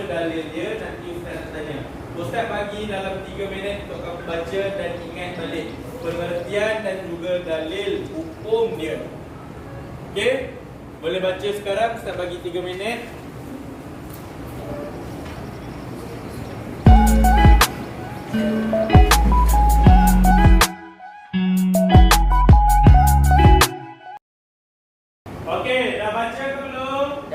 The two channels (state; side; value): identical; both; correlation 1.00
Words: dalil dia. Nanti Ustaz nak tanya. Ustaz bagi dalam 3 minit untuk kamu baca dan ingat balik pengertian dan juga dalil hukum dia. Okey? Boleh baca sekarang. Ustaz bagi 3 minit. Okey, dah baca ke belum?